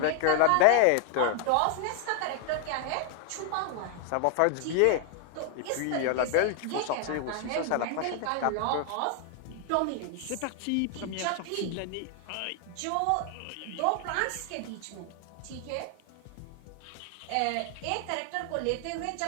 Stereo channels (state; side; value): different; both; correlation 0.00